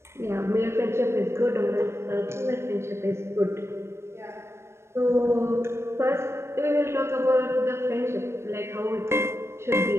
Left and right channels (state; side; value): late; left; 0.13 ms